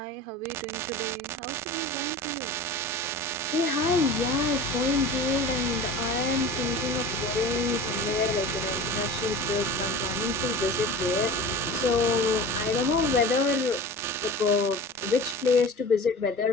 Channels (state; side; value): normal; both; correlation 0.36